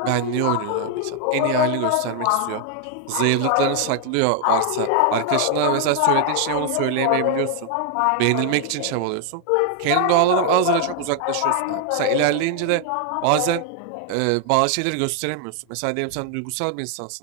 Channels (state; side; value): different; both; correlation 0.00